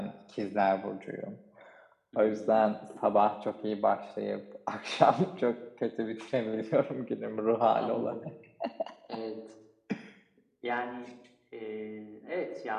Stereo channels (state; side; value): identical; both; correlation 1.00